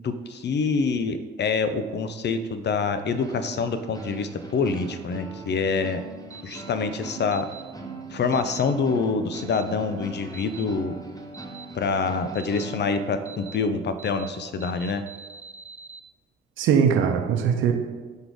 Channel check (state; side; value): normal; both; correlation 0.27